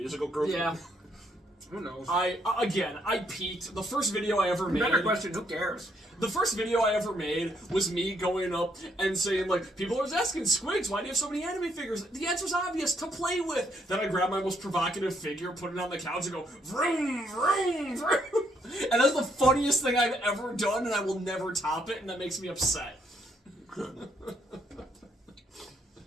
Group? Yeah. Who knows? I peaked. The first video I ever made. Better question. Who cares? The first video I ever made was me going up and saying, like, people are asking, Squigs, why do you have so many anime figures? The answer's obvious, to play with. Then I grab my most provocative figure, put it on the couch, and go, vroom, vroom, vroom. And that's the funniest thing I've ever done, and I will never top it, and that makes me upset.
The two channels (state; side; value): normal; both; correlation 0.72